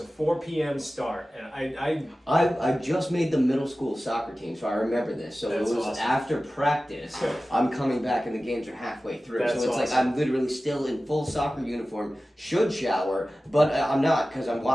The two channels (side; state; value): both; normal; correlation 0.96